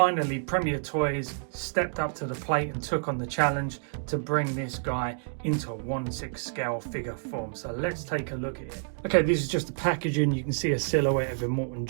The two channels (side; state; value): left; silent; digital silence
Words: Premier Toys stepped up to the plate and took on the challenge to bring this guy into a 1/6 scale figure form. So let's take a look at it. Okay, this is just the packaging. You can see a silhouette of Immortan